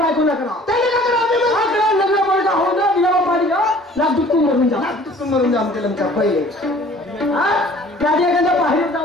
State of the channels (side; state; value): both; normal; correlation 0.51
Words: ना करा, त्याने का करा? लग्न पडता हो ना दिला पाणी लाख दुःखून मरून जा, दुःखून मरून जा आमच्या लमच्या पहिले. त्याच्या एखाद्या बाहेर